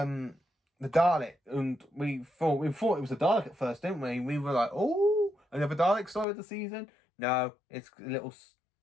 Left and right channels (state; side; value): drops out; right; at 6.2 s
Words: Dalek, and we thought it was a Dalek at first, didn't we? We were like, oh, another Dalek story of the season. No, it's a little